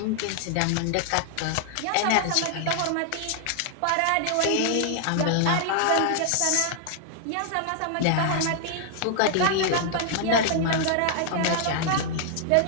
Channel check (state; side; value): different; both; correlation 0.00